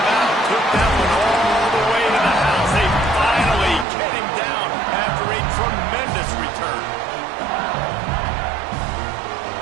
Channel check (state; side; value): drops out; left; at 3.9 s